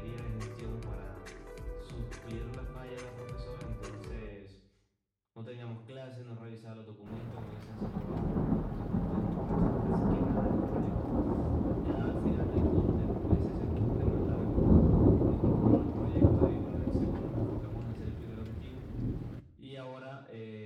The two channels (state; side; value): identical; both; correlation 1.00